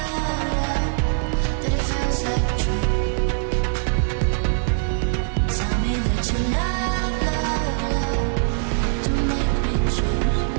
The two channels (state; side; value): silent; left; digital silence